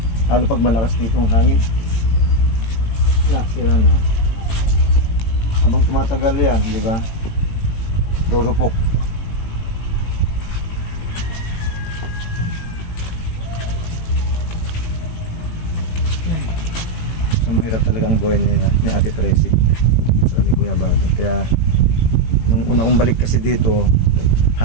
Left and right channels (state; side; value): late; right; 18 ms